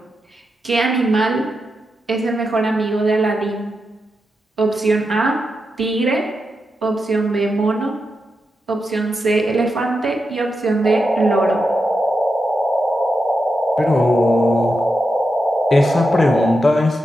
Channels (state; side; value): normal; both; correlation 0.87